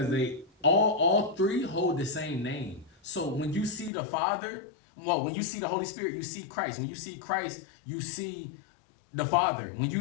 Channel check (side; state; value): right; drops out; at 3.9 s